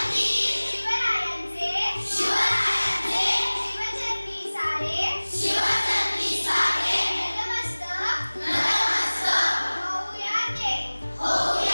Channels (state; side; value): inverted; both; correlation -1.00